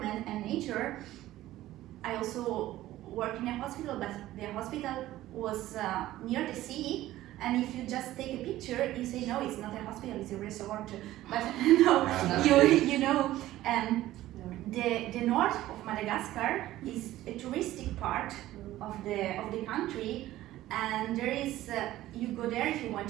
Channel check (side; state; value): left; quieter; 15.1 dB